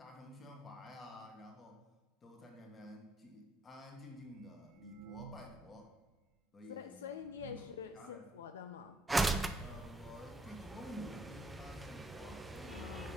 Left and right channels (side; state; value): both; normal; correlation 0.70